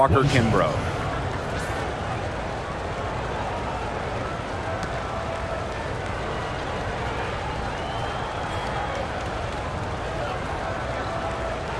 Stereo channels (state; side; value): identical; both; correlation 1.00